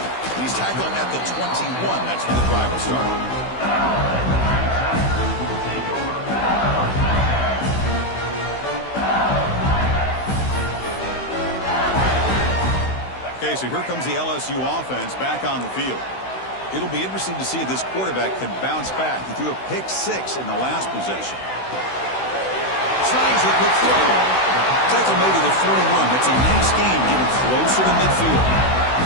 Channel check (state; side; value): late; right; 16 ms